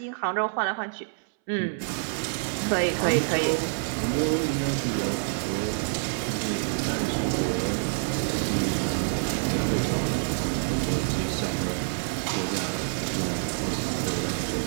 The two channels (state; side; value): silent; left; 60 dB below the other